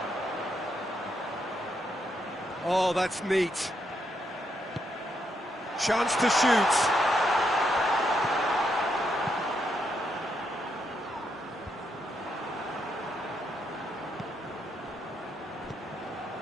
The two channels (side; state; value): both; normal; correlation 0.78